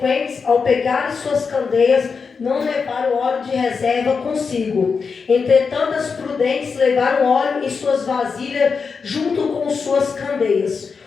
ao pegarem suas candeias, não levaram óleo de reserva consigo. Entretanto, as prudentes levaram óleo em suas vasilhas junto com suas candeias.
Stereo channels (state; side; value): quieter; right; 5.3 dB